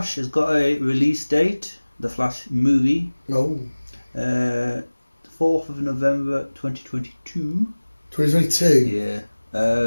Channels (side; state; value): both; inverted; correlation -1.00